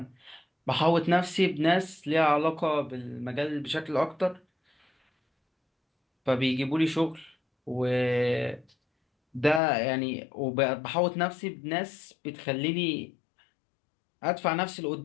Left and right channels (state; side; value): drops out; right; at 9.6 s